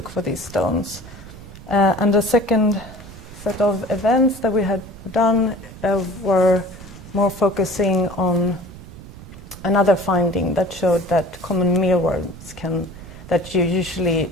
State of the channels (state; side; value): noise; right; rumble, 16 dB below the sound